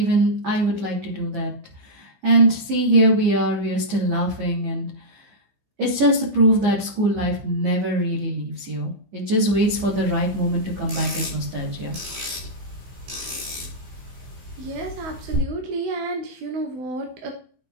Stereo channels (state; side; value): late; left; 15 ms